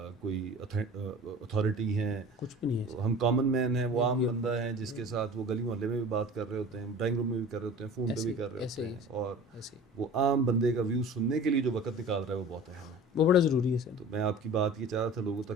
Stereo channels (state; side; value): normal; both; correlation 0.40